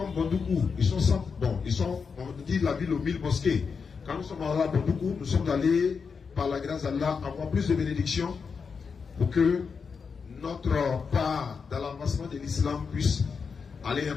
Bondoukou, ils sont 100, bon, ils sont, on dit la ville aux 1000 mosquées. Quand nous sommes allés à Bondoukou, nous sommes allés, par la grâce d'Allah, avoir plus de bénédictions pour que notre part dans l'avancement de l'islam puisse aller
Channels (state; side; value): quieter; right; 5.6 dB